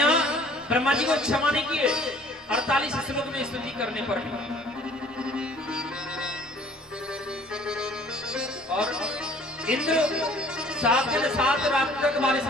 ब्रह्मा जी को क्षमा नहीं किए 48 श्लोक में स्तुति करने पर भी। और इंद्र 7 दिन 7 रात तक बारिश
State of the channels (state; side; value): normal; both; correlation 0.54